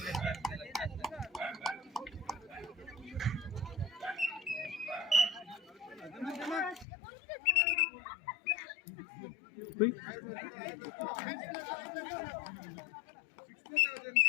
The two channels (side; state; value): right; drops out; at 6.9 s